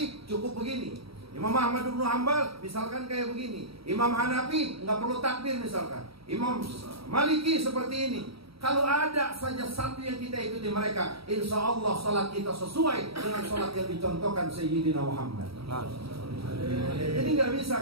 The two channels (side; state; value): left; late; 0.76 ms